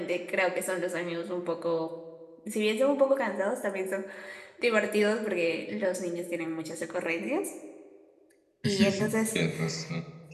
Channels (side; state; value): both; identical; correlation 1.00